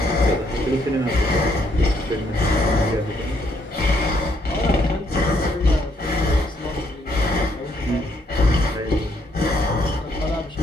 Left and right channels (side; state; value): both; normal; correlation 0.71